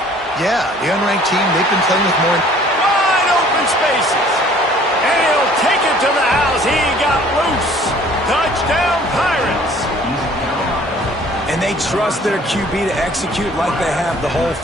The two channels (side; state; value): both; normal; correlation 0.54